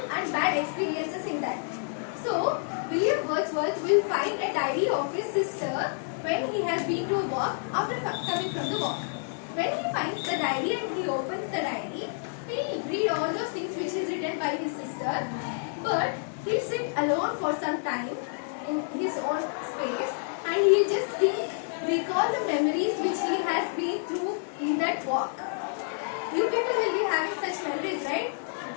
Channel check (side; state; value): right; silent; digital silence